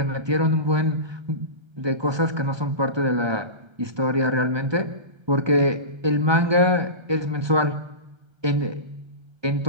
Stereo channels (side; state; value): left; late; 1.2 ms